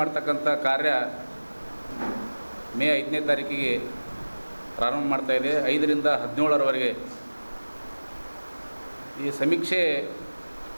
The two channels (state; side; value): inverted; both; correlation -1.00